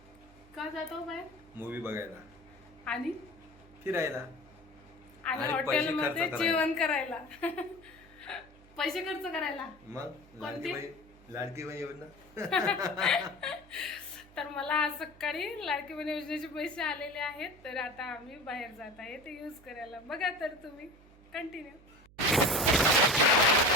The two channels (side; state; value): right; noise; hum, 24 dB below the sound